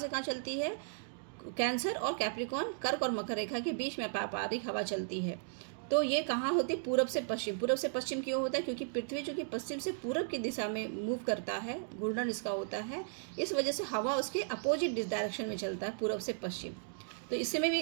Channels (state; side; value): silent; left; digital silence